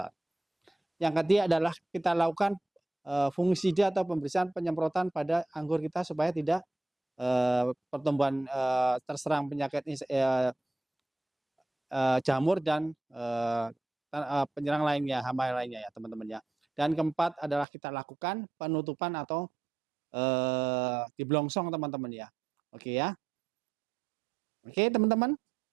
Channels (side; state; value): left; drops out; at 17.7 s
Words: Yang ketiga adalah kita lakukan fungisida atau pembersihan penyemprotan pada anggur kita supaya tidak pertumbuhan terserang penyakit jamur dan penyerang lainnya, hama lainnya ya teman-teman ya. Dan keempat adalah kita lakukan penutupan atau diblongsong teman-teman ya. Oke ya. Oke teman-teman.